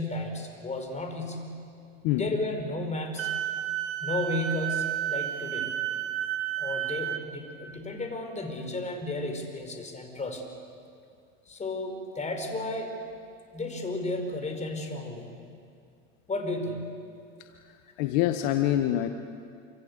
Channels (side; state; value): both; normal; correlation 0.18